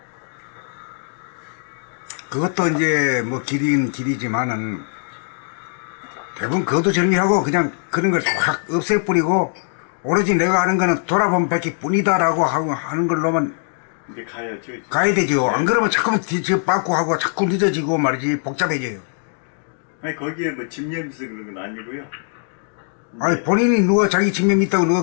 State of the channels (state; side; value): silent; right; digital silence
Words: 그것도 이제 뭐 길이지만은 대부분 그것도 정리하고 그냥 그런 걸 확 없애버리고 오로지 내가 하는 거는 돌아보면 밖에 뿐이다라고 하는 걸로만 근데 가야죠. 가야 되죠. 안 그러면 자꾸 뒤집어 빠꾸 하고 자꾸 늦어지고 말이지 복잡해져요. 아니 거기에 뭐 집념에서 그런 건 아니고요. 아니 본인이 누가 자기 집념이 있다고 누가